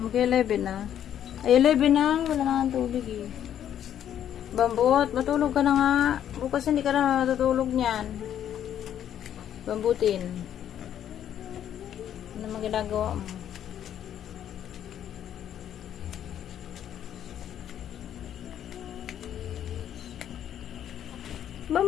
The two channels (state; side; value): quieter; right; 10.2 dB